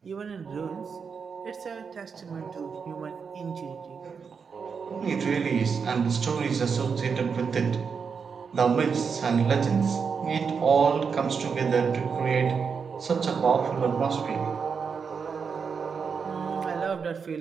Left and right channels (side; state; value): left; quieter; 5.9 dB